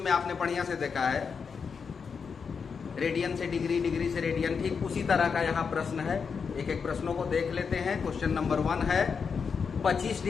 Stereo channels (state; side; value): quieter; right; 5.9 dB